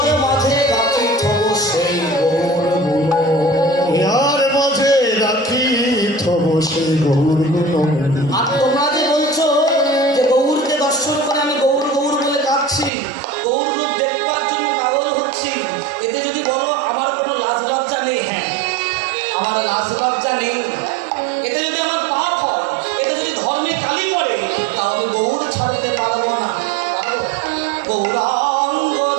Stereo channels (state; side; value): drops out; left; at 12.9 s